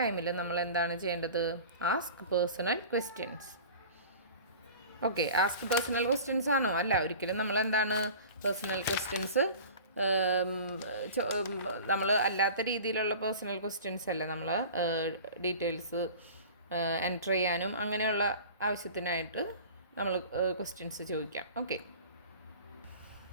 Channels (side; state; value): both; inverted; correlation -0.40